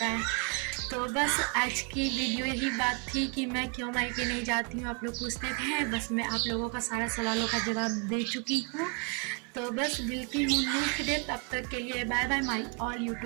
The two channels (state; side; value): quieter; left; 36.4 dB